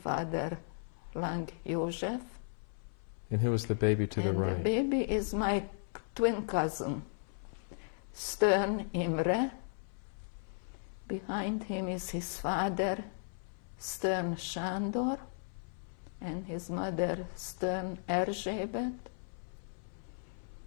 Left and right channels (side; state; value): right; silent; 54 dB below the other